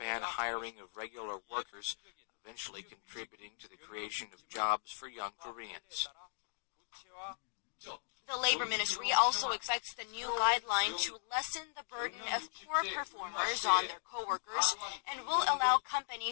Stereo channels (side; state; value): right; silent; digital silence